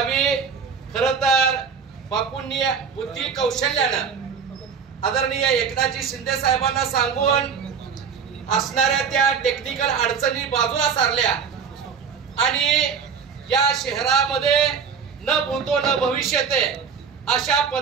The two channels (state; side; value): quieter; left; 6.4 dB